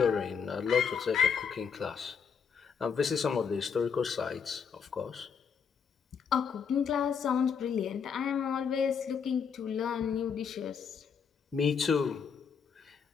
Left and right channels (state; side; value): quieter; right; 6.6 dB